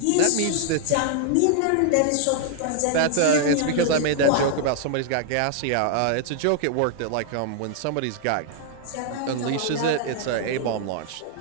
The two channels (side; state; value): both; different; correlation 0.00